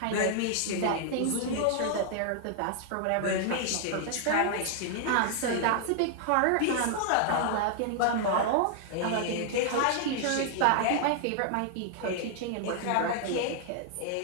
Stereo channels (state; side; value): different; both; correlation -0.01